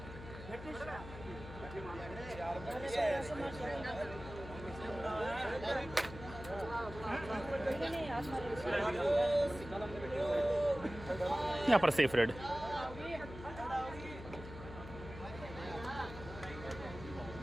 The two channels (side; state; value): left; noise; hum, 12 dB below the sound